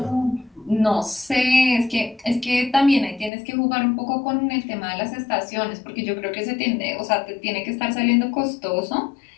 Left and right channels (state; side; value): drops out; right; at 3.3 s